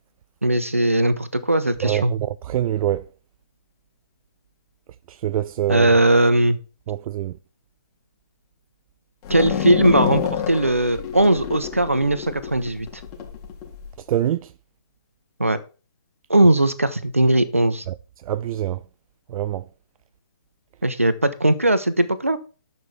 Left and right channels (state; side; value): inverted; both; correlation -0.76